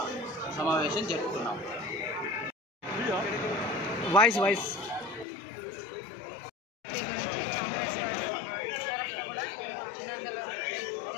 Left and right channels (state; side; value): drops out; right; at 5.2 s